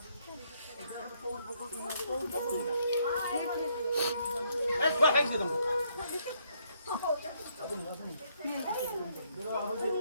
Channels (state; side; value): inverted; both; correlation -0.71